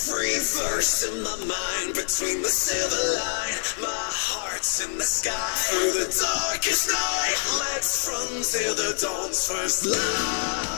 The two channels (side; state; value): right; silent; digital silence